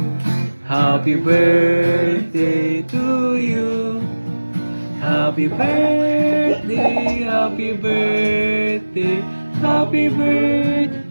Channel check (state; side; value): inverted; both; correlation -1.00